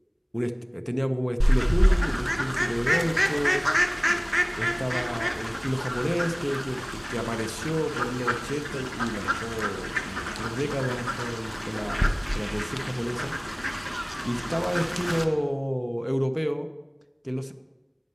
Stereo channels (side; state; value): both; identical; correlation 1.00